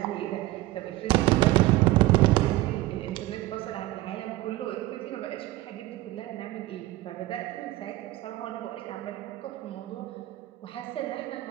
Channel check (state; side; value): quieter; left; 17.4 dB